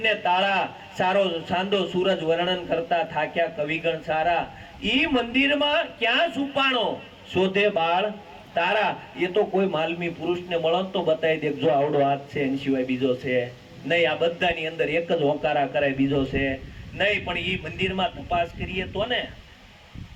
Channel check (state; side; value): identical; both; correlation 1.00